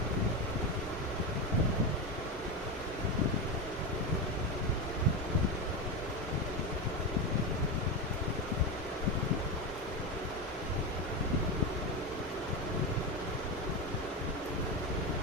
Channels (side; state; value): both; normal; correlation 0.16